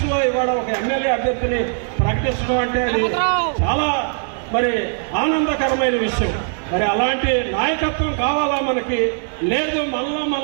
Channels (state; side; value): silent; left; 66 dB below the other